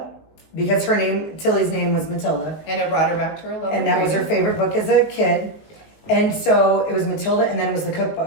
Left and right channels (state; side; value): late; right; 19 ms